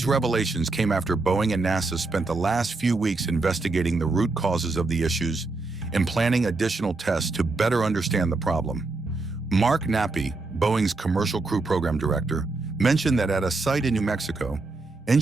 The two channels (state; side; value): quieter; left; 3.5 dB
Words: revelations came after Boeing and NASA spent the last few weeks investigating the root causes of the issues and planning additional tests to better understand the problem. Mark Nappy, Boeing's Commercial Crew Program Director, mentioned that at a site in New Mexico,